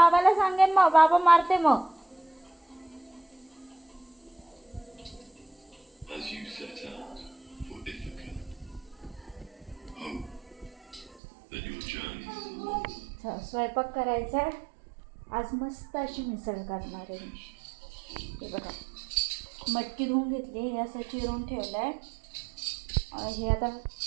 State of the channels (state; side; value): drops out; left; at 11.2 s